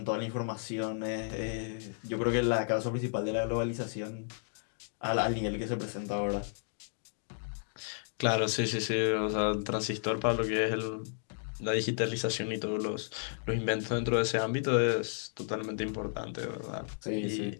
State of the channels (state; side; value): silent; right; digital silence